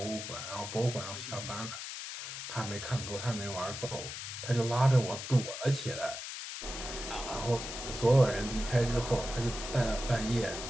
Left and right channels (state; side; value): noise; left; hiss, 7 dB below the sound